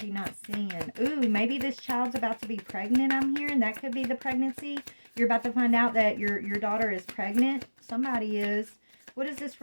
not seeing? Ooh, maybe this child's about to be pregnant, I'm hearing. That could be the pregnancy. You're about to find out that your daughter is pregnant. Somebody is. What is this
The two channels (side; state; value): both; inverted; correlation -1.00